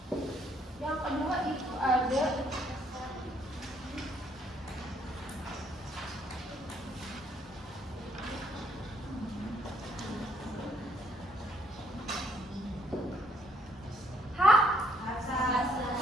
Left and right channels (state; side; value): normal; both; correlation 0.68